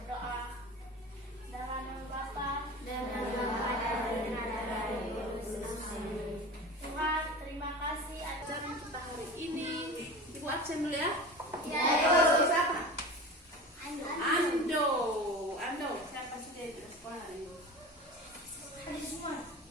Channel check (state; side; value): normal; both; correlation 0.33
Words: Dalam nama Bapa dan nama Tuhan, terima kasih atas Ajaran kita hari ini. Ibu absen dulu ya. Ya. Siapa? Ando. Siapa sih dia di sekolah hari ini?